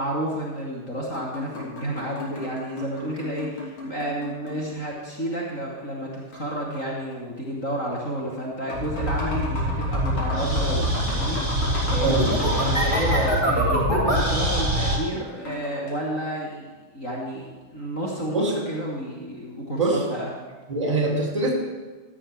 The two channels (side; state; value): right; late; 3.9 ms